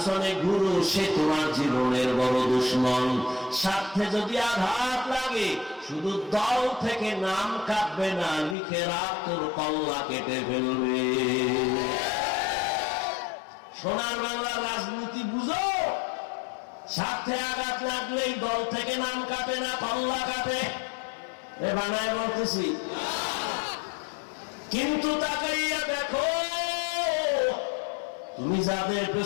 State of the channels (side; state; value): right; drops out; at 8.6 s